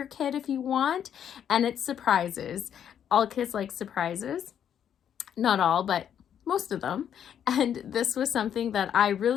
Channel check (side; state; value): right; quieter; 9.1 dB